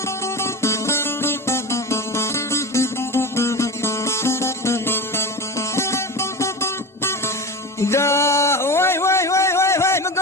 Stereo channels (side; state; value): both; normal; correlation 0.28